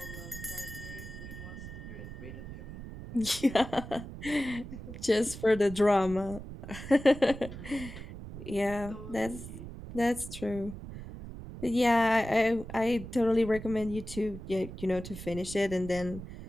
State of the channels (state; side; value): noise; right; rumble, 11 dB below the sound